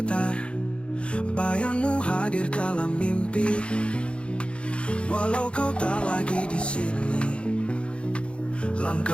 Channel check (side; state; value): right; late; 0.058 ms